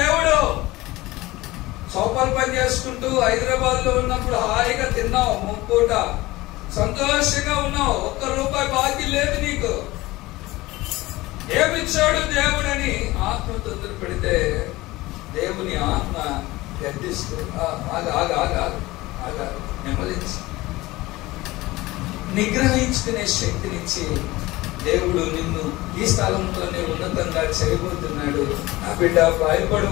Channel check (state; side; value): quieter; right; 19.4 dB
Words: చౌపలు పని చేసుకుంటూ హైదరాబాద్ లో ఉన్నప్పుడు హాయిగా తిన్నావు, ముప్పూట సంతోషంగా ఉన్నావు, ₹1 బాకీ లేదు నీకు. ఏమిచ్చాడు దేవుడని ఆత్మ తొందర పెడితే దేవుని ఆత్మ గడ్డిస్తూ నెమ్మదించి నిగ్రహించుకునే శక్తినిచ్చి దేవుడు నిన్ను ఈ స్థలంలోనే ఉన్నతంగా చేయబోతున్నాడు, నా బిడ్డ